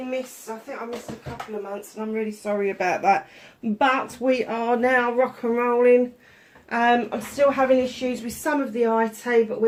missed, I think I missed a couple of months and I'm really sorry about that. But we are now rock and rolling. I'm still having issues with some of the IT, but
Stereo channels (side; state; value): both; identical; correlation 1.00